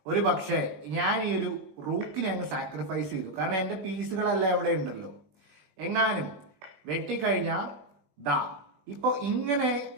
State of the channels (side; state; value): left; late; 20 ms